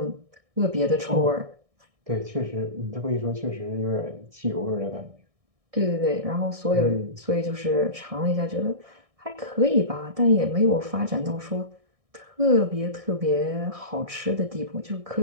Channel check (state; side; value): late; left; 1.6 ms